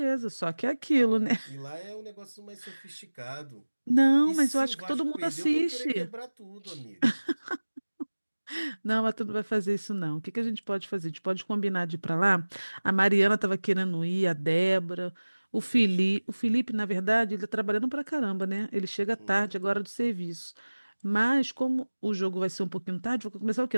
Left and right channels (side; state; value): both; inverted; correlation -1.00